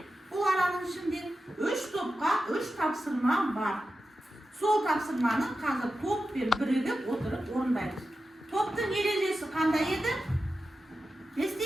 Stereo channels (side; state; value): both; normal; correlation 0.92